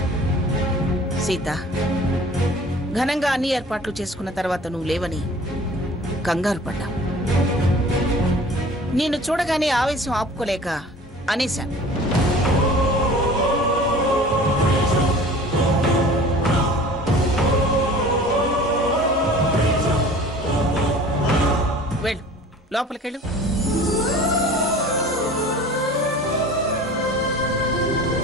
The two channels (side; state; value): both; normal; correlation 0.45